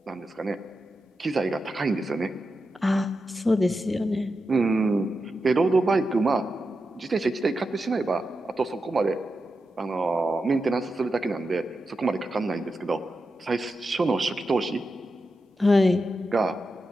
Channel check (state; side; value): normal; both; correlation 0.89